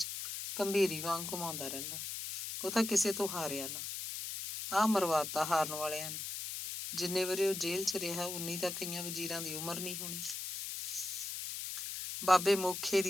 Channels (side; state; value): left; noise; hiss, 5 dB below the sound